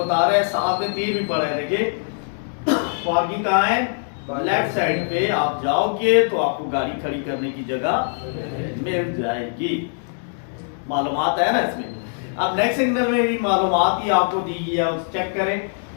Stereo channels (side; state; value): right; silent; digital silence